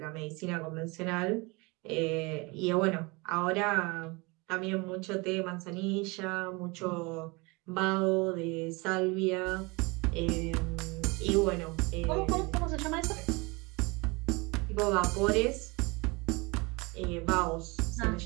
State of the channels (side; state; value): left; quieter; 26.6 dB